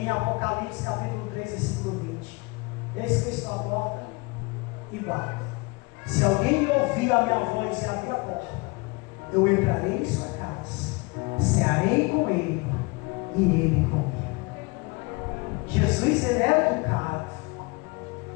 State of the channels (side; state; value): right; quieter; 27.4 dB